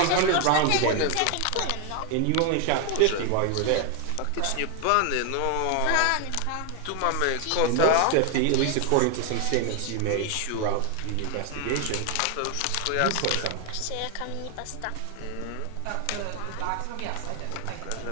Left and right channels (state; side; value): different; both; correlation 0.01